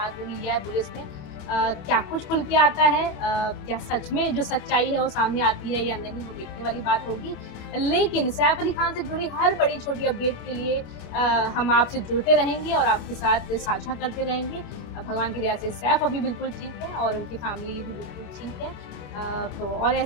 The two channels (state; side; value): late; right; 27 ms